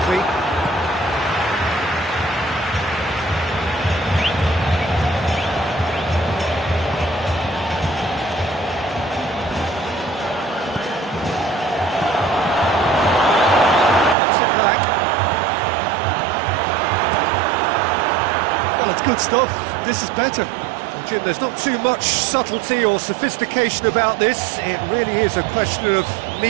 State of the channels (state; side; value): drops out; left; at 14.2 s